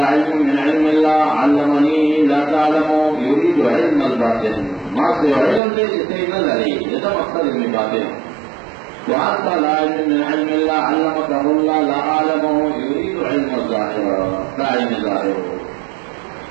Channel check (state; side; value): drops out; left; at 5.6 s